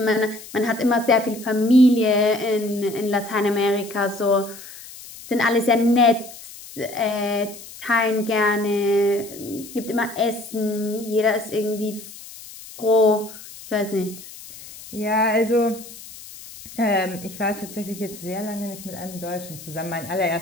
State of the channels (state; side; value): noise; left; hiss, 16 dB below the sound